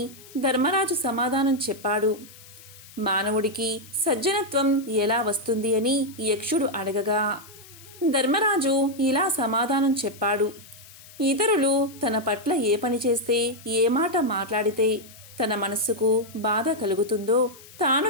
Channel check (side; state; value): left; noise; hiss, 20 dB below the sound